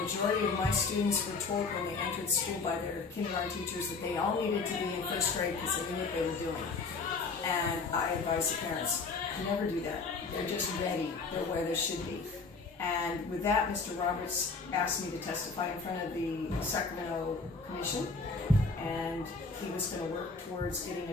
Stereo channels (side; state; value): right; quieter; 4.2 dB